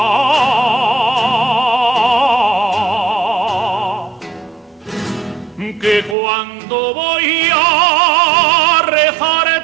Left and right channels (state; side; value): drops out; left; at 6.2 s